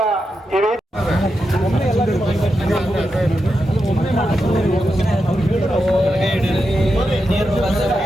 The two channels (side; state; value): both; normal; correlation 0.87